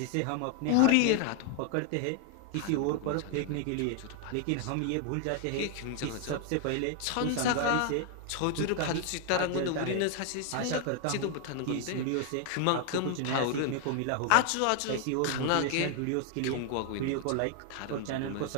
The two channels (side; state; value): both; different; correlation 0.00